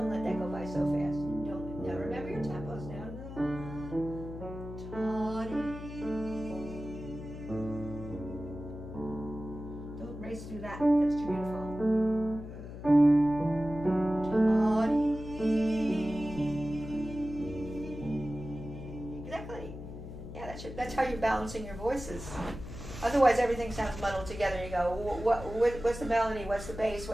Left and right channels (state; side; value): noise; left; hum, 11 dB below the sound